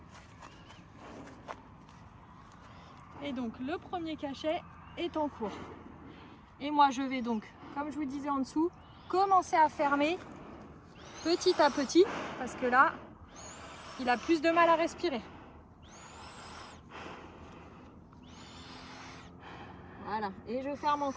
Et donc le premier cachet est en cours. Et moi je vais donc, comme je vous disais en dessous, commencer à fermer petit à petit. Parce que là, il a plus de mal à respirer. Voilà, et je ferme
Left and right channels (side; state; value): both; identical; correlation 1.00